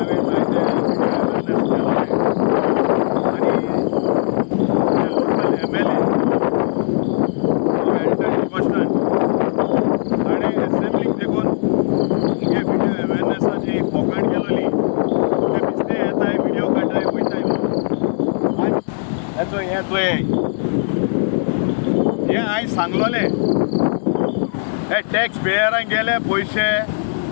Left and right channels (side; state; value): right; silent; 62 dB below the other